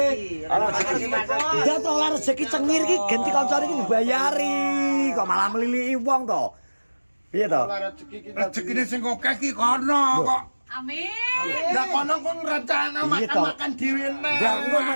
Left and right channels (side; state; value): both; inverted; correlation -1.00